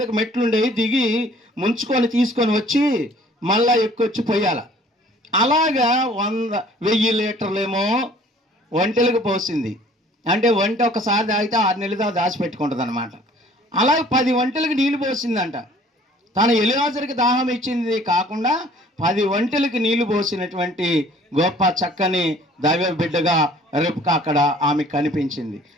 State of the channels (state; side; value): normal; both; correlation 0.54